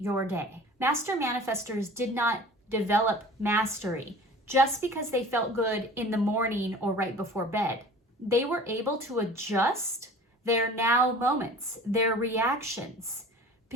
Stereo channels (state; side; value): normal; both; correlation 0.43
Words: day. Master manifestors did not develop mastery just because they felt good in the morning or right before bed. They were able to adjust their now moments, their reactions,